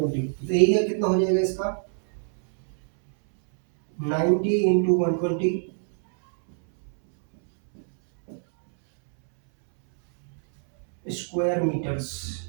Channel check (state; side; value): silent; left; 62 dB below the other